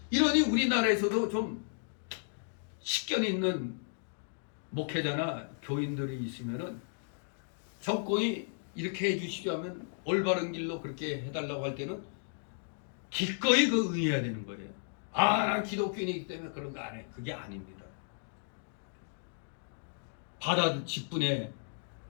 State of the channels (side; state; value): right; silent; digital silence